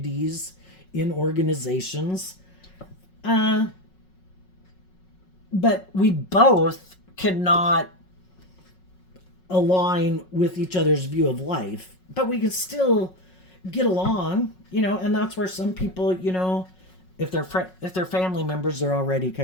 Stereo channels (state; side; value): late; right; 5.4 ms